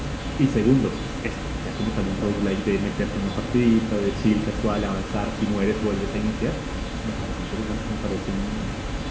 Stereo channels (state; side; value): identical; both; correlation 1.00